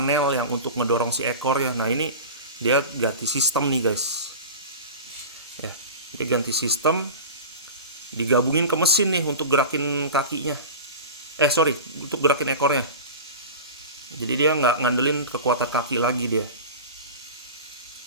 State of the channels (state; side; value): inverted; both; correlation -0.31